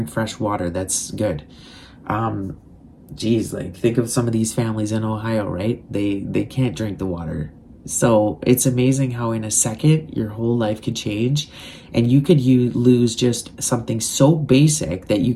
fresh water. That's good. Geez, like, think of some of these families in Ohio, right? They can't drink the water. So it's amazing how in a second your whole life could change, and you could lose just something so basic that you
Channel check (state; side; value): identical; both; correlation 1.00